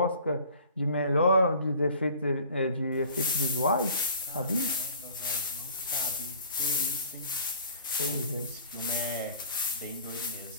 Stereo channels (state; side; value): inverted; both; correlation -0.49